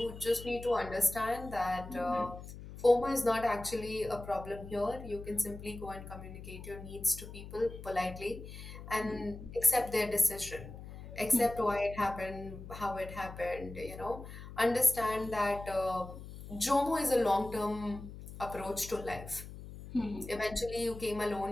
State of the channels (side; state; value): left; noise; hum, 13 dB below the sound